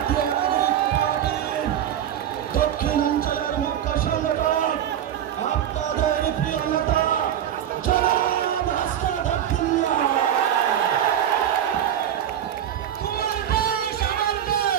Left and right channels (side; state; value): left; quieter; 10.3 dB